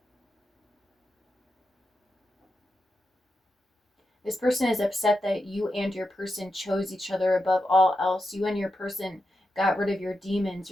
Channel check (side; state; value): both; normal; correlation 0.87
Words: This person is upset that you and your person chose each other above all else. You and your person got rid of your demons,